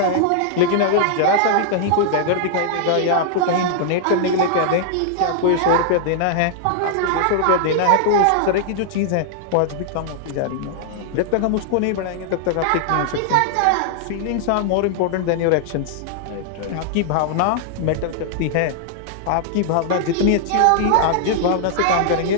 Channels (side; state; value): both; different; correlation -0.01